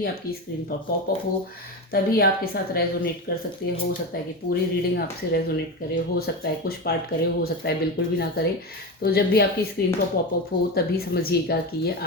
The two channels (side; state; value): both; normal; correlation 0.20